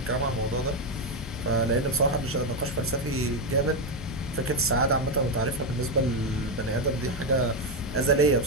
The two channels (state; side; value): normal; both; correlation 0.06